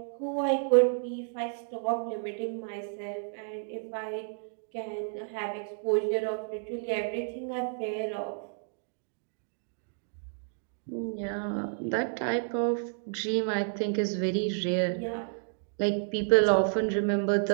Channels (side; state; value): left; silent; digital silence